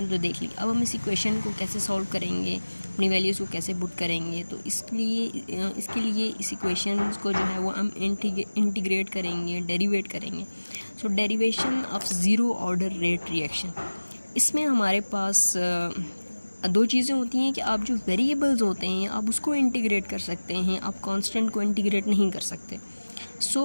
तो देख ली, अब हम इस इक्वेशन को कैसे सॉल्व करेंगे, अपनी वैल्यूज़ को कैसे पुट करेंगे। तो इसके लिए इस इक्वेशन को जो है वो हम इंटीग्रेट करेंगे, डेरिवेट करेंगे। So derivation of zero order rate reaction, इसमें हमारे पास दो चीज़ें होती हैं कि आप जो वेरिएबल्स होते हैं आप उसको इंटीग्रेट कर सकते हैं, आप कांस्टेंट को इंटीग्रेट नहीं कर सकते। सो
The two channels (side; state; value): both; inverted; correlation -1.00